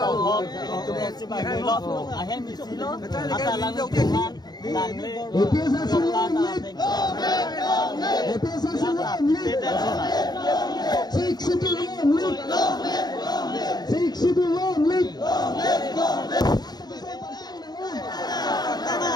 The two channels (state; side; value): late; right; 0.20 ms